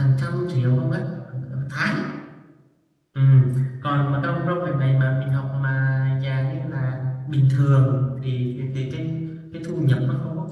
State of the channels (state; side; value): identical; both; correlation 1.00